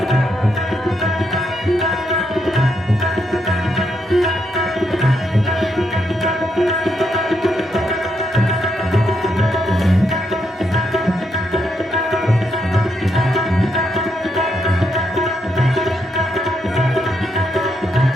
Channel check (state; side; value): normal; both; correlation 0.78